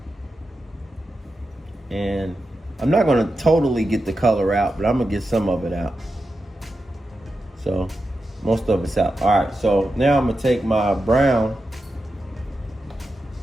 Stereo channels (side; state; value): both; normal; correlation 0.90